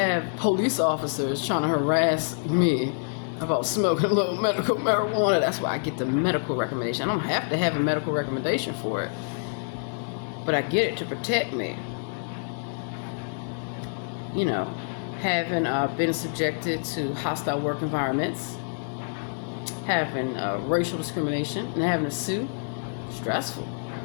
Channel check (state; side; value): silent; right; digital silence